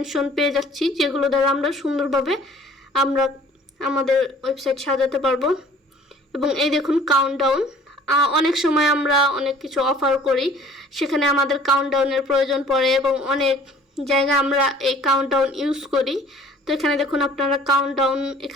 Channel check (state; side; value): normal; both; correlation 0.52